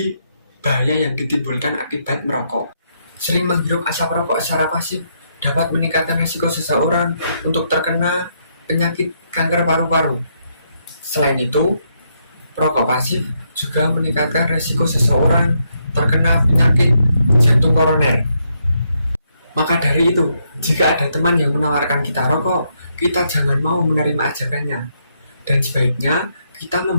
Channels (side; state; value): both; inverted; correlation -0.77